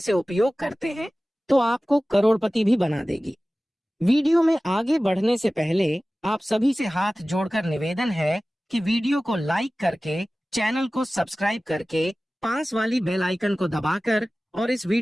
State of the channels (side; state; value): both; normal; correlation 0.97